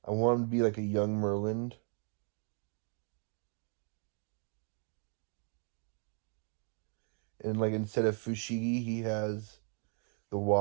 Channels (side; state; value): left; quieter; 39.8 dB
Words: I want him to be like a young Merlin. And like instead of Fushigi, he has the